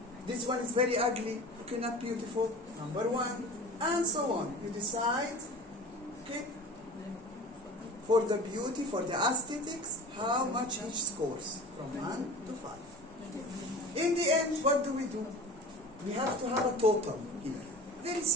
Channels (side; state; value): both; normal; correlation 0.38